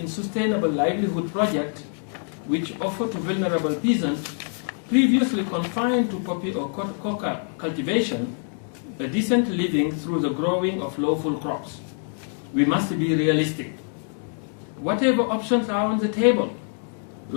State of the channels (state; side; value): silent; right; 57 dB below the other